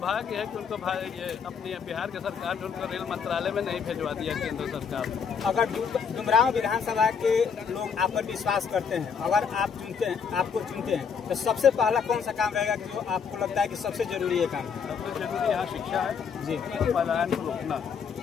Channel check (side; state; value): right; quieter; 6.4 dB